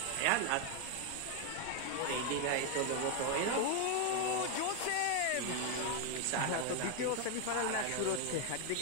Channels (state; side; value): different; both; correlation 0.01